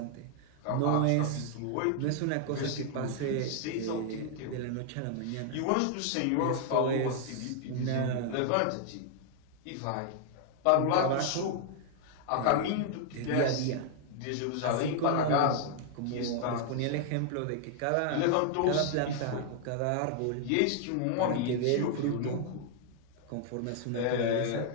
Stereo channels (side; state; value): both; different; correlation 0.00